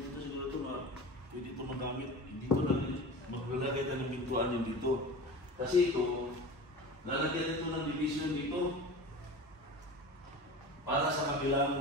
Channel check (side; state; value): both; normal; correlation 0.33